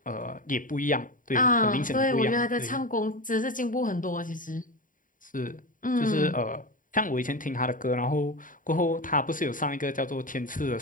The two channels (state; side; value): late; right; 0.39 ms